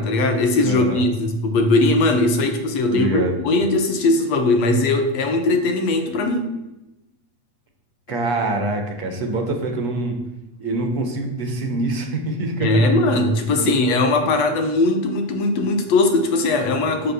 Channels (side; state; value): right; late; 8.3 ms